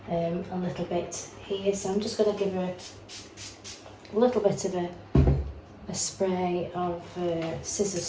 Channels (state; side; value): identical; both; correlation 1.00